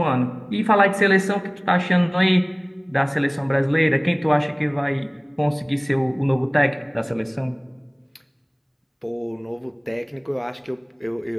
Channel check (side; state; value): both; identical; correlation 1.00